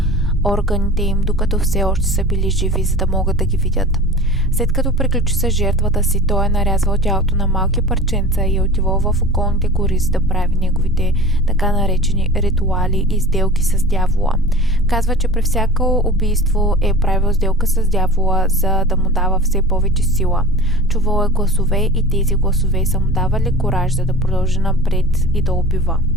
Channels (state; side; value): normal; both; correlation 0.39